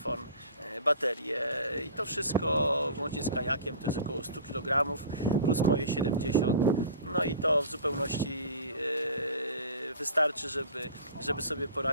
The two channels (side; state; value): both; inverted; correlation -0.41